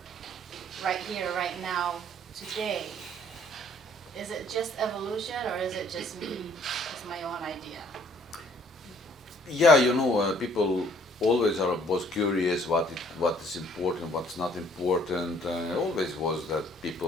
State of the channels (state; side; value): normal; both; correlation 0.60